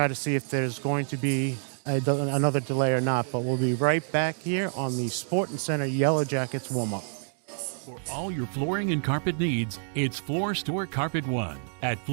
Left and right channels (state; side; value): silent; left; digital silence